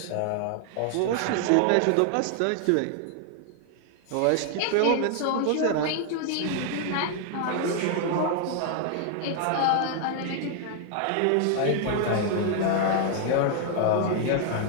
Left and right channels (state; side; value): different; both; correlation 0.00